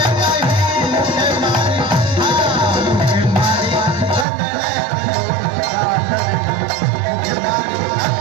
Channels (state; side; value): drops out; left; at 4.2 s